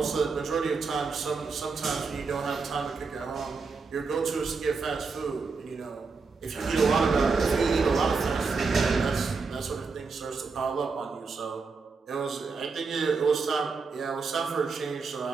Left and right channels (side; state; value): left; quieter; 4.6 dB